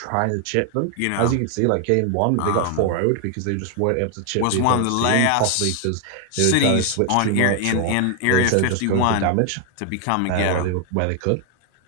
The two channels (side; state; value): both; different; correlation 0.00